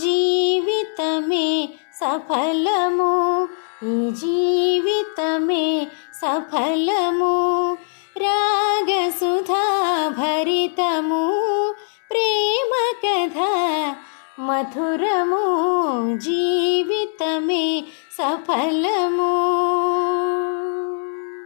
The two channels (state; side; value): silent; right; digital silence